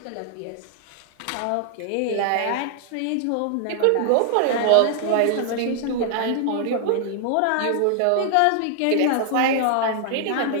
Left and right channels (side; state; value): both; different; correlation 0.00